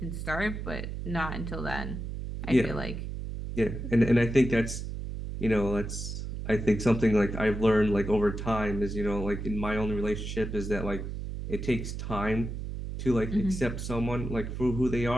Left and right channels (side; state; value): right; noise; hum, 6 dB below the sound